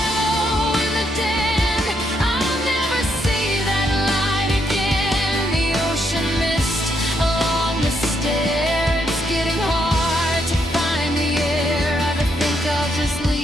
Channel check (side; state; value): both; normal; correlation 0.76